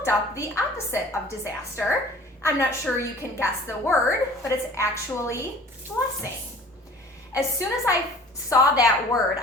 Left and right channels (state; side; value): normal; both; correlation 0.47